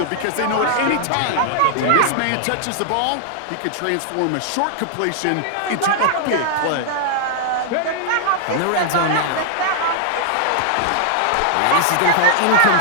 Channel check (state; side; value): different; both; correlation -0.01